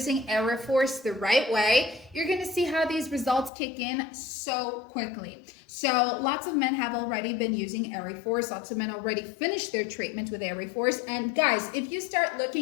Ereforce the right way, you're gonna see how these results kick in so quickly. So lots of men have already been using Ereforce. Lots of men already finished their treatment with Ereforce. And guys, if you start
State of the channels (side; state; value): right; drops out; at 3.5 s